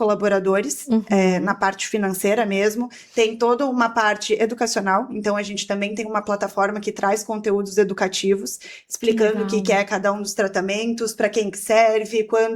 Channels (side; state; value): both; identical; correlation 1.00